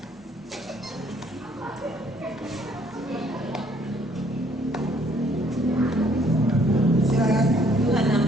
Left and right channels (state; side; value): normal; both; correlation 0.64